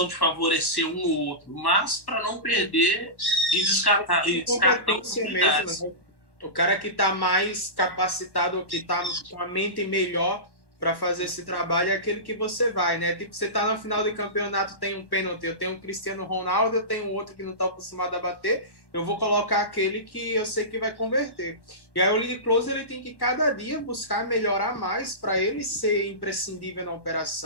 de favorecer um ou outro, mas para não perder e descartar oportunidades. Mesmo, né? O cara que está mais capacitado, que está com a mente melhor para fazer esse trabalho é aquele que você vai, né? Tipo, você está no final do campeonato, tem um pênalti, eu tenho um Cristiano Ronaldo, eu tenho outro que não está acostumado a bater, eu vou colocar aquele que eu sei que vai converter. E aí o lead closer ele tem que cada dia buscar melhorar mais para ele ser imprescindível na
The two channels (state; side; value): late; right; 1.1 ms